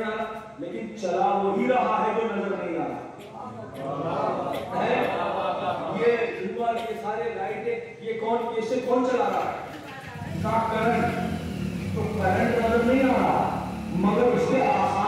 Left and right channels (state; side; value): identical; both; correlation 1.00